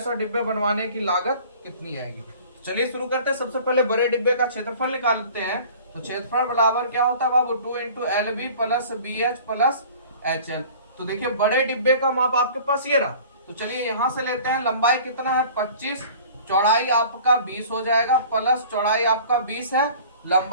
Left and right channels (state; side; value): inverted; both; correlation -0.46